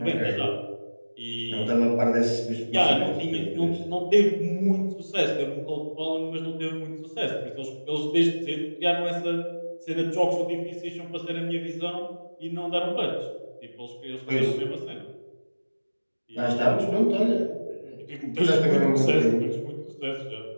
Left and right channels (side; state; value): both; inverted; correlation -1.00